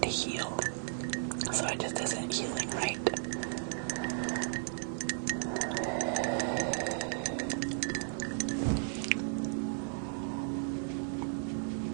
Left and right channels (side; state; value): left; silent; digital silence